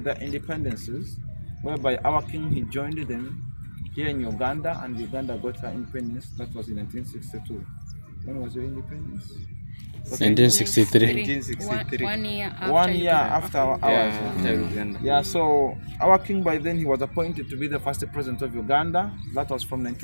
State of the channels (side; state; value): both; inverted; correlation -1.00